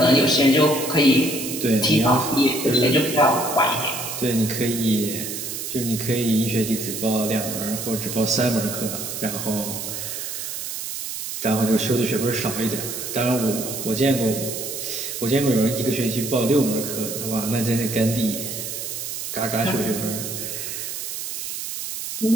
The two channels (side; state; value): right; noise; hiss, 6 dB below the sound